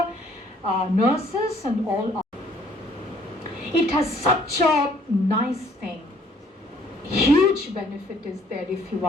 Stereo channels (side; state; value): both; normal; correlation 0.61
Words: nurses and all. It has such a nice thing. Huge benefit is there if you